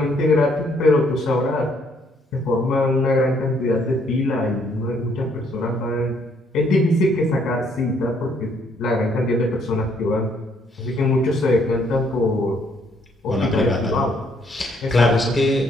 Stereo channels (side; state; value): both; normal; correlation 0.68